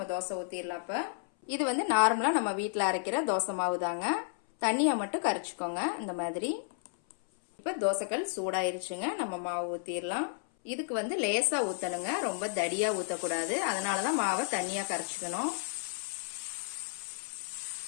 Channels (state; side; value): silent; right; 56 dB below the other